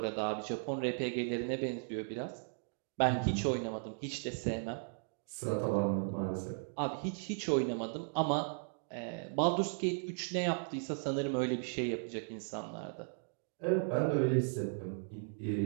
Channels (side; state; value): left; silent; digital silence